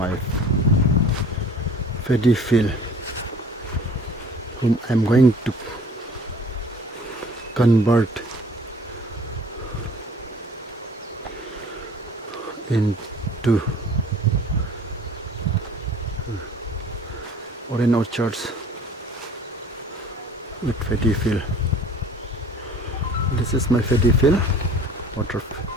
paddy field whom I am going to convert into orange orchards with paddy field. This is my paddy field, water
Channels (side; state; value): both; normal; correlation 0.49